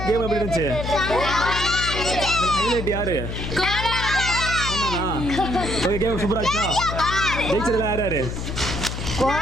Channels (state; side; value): noise; left; hum, 5 dB below the sound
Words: கேம் எப்படி இருந்துச்சு? ஹைலைட் யாரு? ஓகே, கேம் சூப்பரா இருந்துச்சா? ஜெயிச்சதுல யார் யாரு